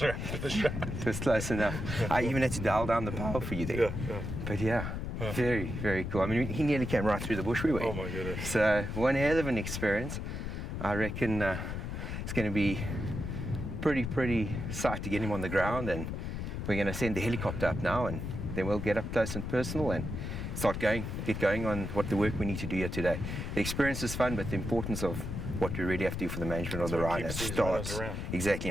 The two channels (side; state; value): left; noise; rumble, 4 dB below the sound